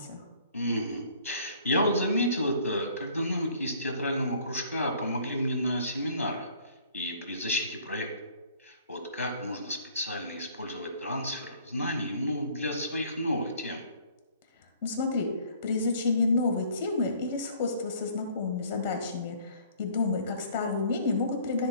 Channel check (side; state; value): both; inverted; correlation -0.56